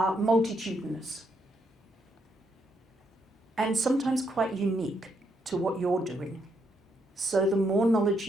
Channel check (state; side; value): normal; both; correlation 0.77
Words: multitudinous and sometimes quite unique to what you're doing. So the more knowledge